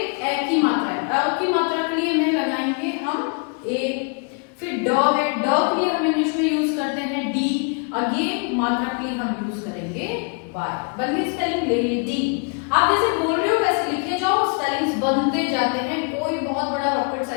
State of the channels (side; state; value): right; quieter; 36.1 dB